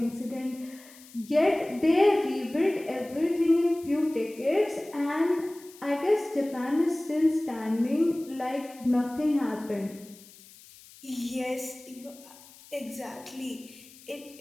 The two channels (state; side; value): noise; left; hiss, 22 dB below the sound